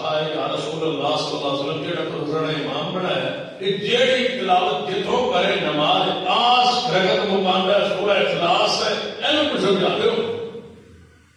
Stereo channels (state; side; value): identical; both; correlation 1.00